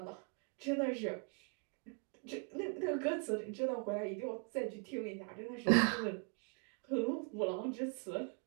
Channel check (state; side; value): quieter; left; 38.7 dB